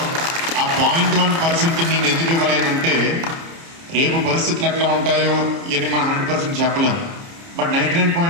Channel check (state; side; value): late; left; 30 ms